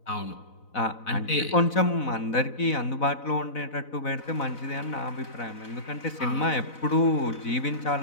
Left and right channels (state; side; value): late; right; 4.0 ms